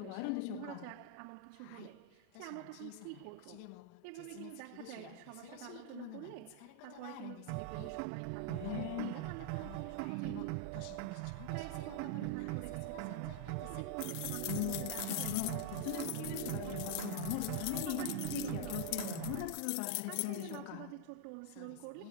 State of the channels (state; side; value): different; both; correlation 0.00